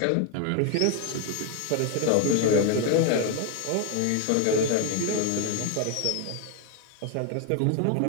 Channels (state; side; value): different; both; correlation 0.01